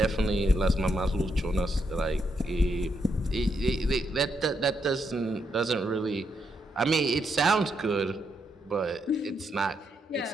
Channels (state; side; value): normal; both; correlation 0.79